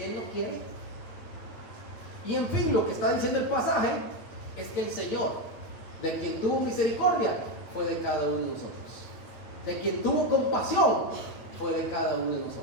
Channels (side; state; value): right; late; 8.8 ms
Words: él no quiere. Y en fin, lo que está diciendo el pasaje es que el Señor, de quien tuvo misericordia, fue de cada uno de nosotros. De quien tuvo compasión, fue de cada uno de nosotros.